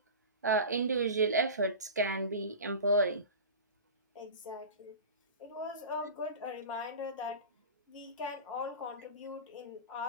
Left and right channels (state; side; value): inverted; both; correlation -0.31